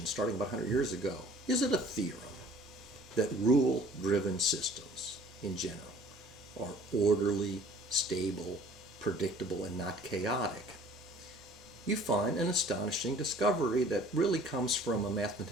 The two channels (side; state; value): both; normal; correlation 0.52